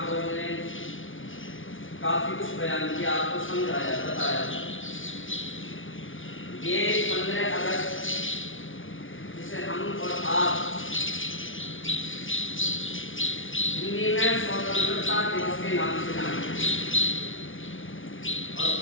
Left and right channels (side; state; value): right; late; 0.57 ms